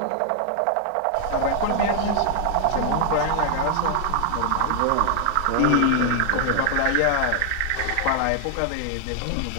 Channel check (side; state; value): both; different; correlation 0.00